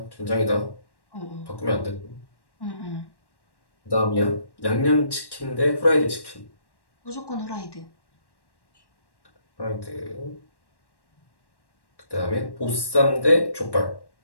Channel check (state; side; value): late; right; 1.1 ms